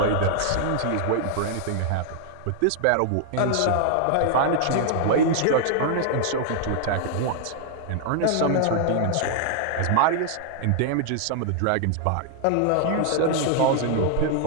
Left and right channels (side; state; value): both; different; correlation -0.01